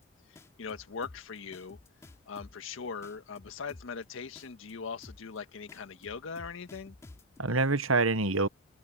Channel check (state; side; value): normal; both; correlation -0.09